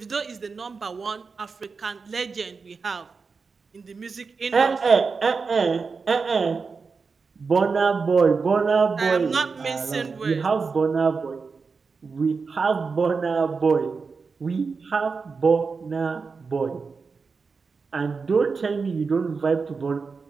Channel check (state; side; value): quieter; left; 4.8 dB